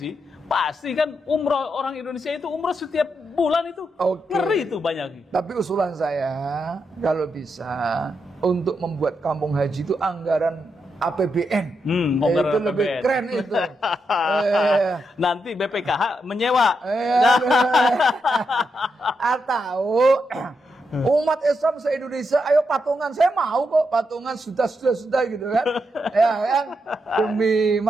pasti kan umroh, orang Indonesia itu umroh setiap bulan itu. Ngeri itu banyak. Tapi usulan saya kalau bisa untuk membuat kampung haji itu anggaran APBN. Itu lebih keren itu. Nanti BPKH menyewa. Atau umat Islam se-Indonesia, ayo patungan, saya mau kok patungan sudah gitu kan. Ya kan, demi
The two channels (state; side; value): normal; both; correlation 0.83